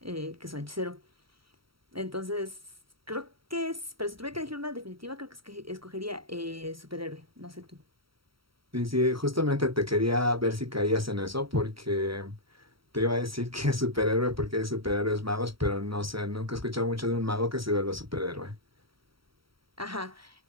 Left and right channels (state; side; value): late; left; 0.75 ms